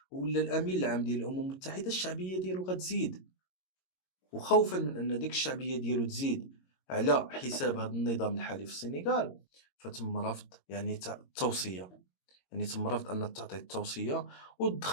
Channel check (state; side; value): late; right; 22 ms